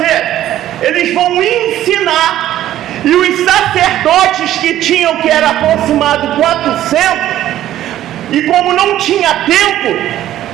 Eles vão ensinar, e os sacerdotes que tinham, que era aproximado 400, e como não tinha tempo,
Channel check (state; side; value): quieter; left; 12.9 dB